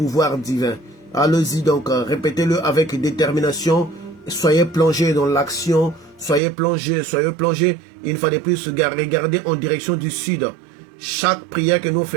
divins. Allez-y donc, répétez-le avec détermination. Soyez plongés dans l'action, soyez plongés. Une fois de plus, regardez en direction du sud. Chaque prière que nous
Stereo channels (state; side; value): drops out; left; at 6.4 s